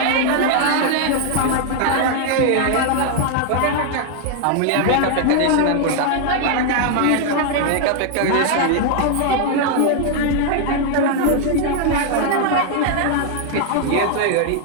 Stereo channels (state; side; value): different; both; correlation 0.00